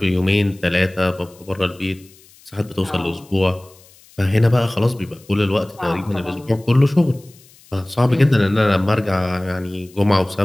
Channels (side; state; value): left; noise; hiss, 27 dB below the sound